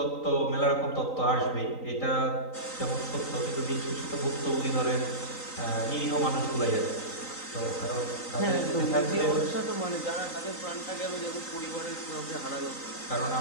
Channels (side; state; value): right; late; 3.9 ms